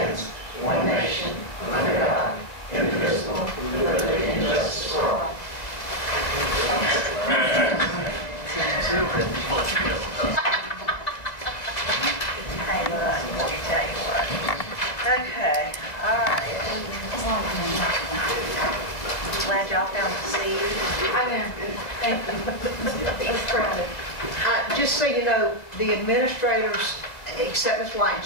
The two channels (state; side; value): late; right; 2.0 ms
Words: one nation, under God, indivisible, with liberty and justice for all. Hey, look, let me tell you what. Okay, all right. Glad y'all found the seat. I am. Thank you. It's crowded. Just so you know, the administrators, except Ms. White,